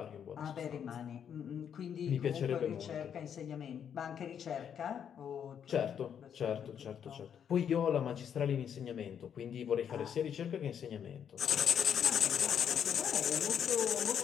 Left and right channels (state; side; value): quieter; right; 8.3 dB